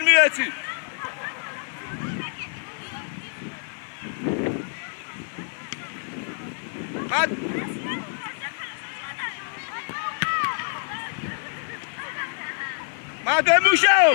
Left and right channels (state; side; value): silent; right; digital silence